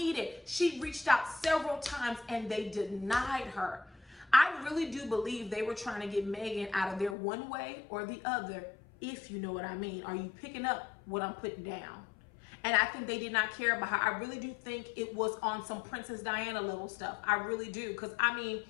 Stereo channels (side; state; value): right; drops out; at 7.2 s